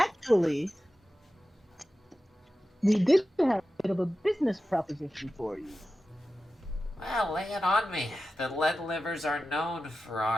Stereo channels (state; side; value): normal; both; correlation 0.93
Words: we did have a bit of a business proposition for you. Well, lay it on me. The Lead Livers are known for